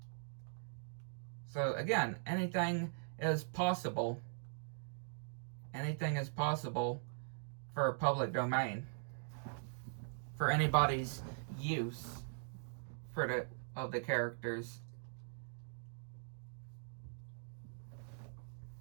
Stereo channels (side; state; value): left; silent; digital silence